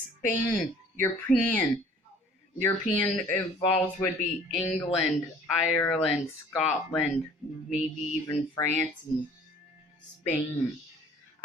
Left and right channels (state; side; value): normal; both; correlation 0.52